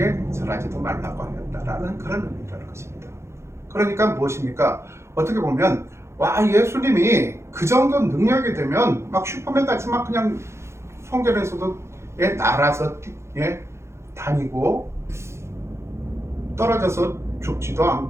절하지도 말라고 하였다라는 그런 의미라는 것입니다. 그러니까 무엇입니까? 어떻게 보면 와, 예수님이 그 정도 능력이 되면 막 슈퍼맨 같이 막 그냥 성전에서도 날아서 다니고 떨어져서 죽지도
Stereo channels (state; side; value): late; left; 0.13 ms